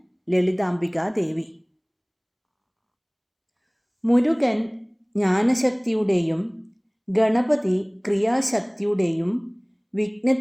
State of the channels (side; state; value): both; identical; correlation 1.00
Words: ലളിതാംബികാ ദേവി. മുരുകൻ ജ്ഞാനശക്തിയുടെയും ഗണപതി ക്രിയാശക്തിയുടെയും